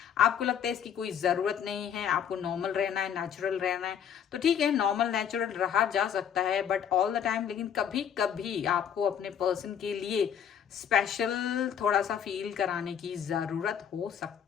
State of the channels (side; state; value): right; quieter; 8.5 dB